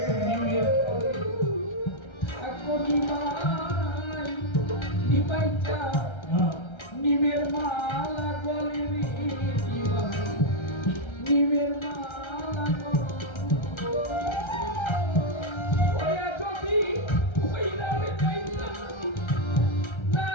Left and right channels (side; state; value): right; late; 1.3 ms